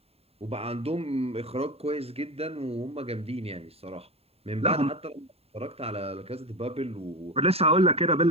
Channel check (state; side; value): late; left; 0.29 ms